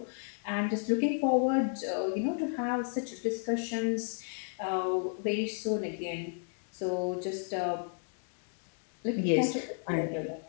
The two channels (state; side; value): silent; right; 56 dB below the other